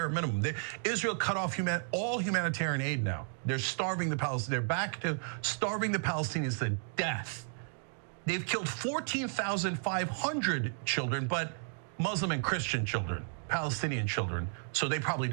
minimum. Israel cut off all humanitarian aid now. They're starving the Palestinians. They're back to starving the Palestinians to death. They've killed 14,500 children, but Muslim and Christian children, Palestinian children, so they probably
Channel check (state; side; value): silent; left; 56 dB below the other